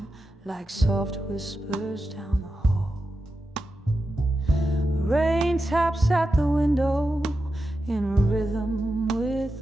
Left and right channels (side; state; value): both; normal; correlation 0.90